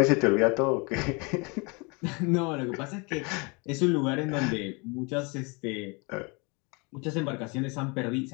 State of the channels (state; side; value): quieter; right; 29.8 dB